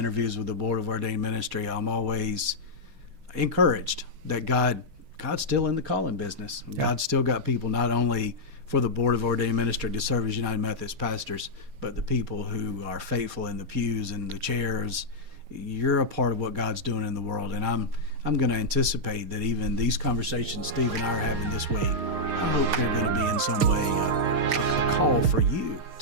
with the Board of Ordained Ministry, I'm always encouraged that God's still in the calling business. God's still got people not only for the Board of Ordained Ministry to serve as United Methodist pastors, but the people who are faithful in the pews and the chairs. You're a part of what God's doing in the world, and I'm going to anticipate that even these conversations Steve and I are having this week, I hope they're going to be in some way a call for you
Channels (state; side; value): late; left; 6.5 ms